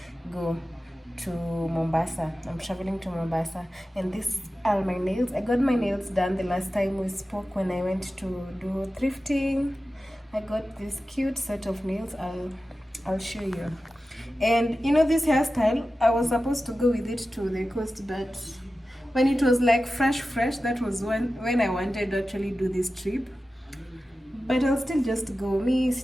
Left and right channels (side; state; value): both; normal; correlation 0.94